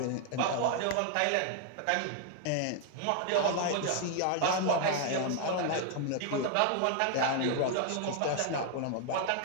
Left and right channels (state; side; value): different; both; correlation 0.00